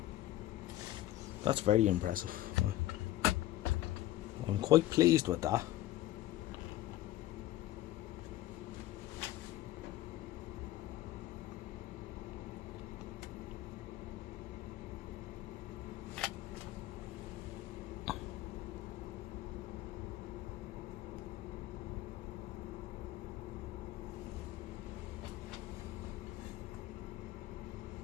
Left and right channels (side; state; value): right; quieter; 14.8 dB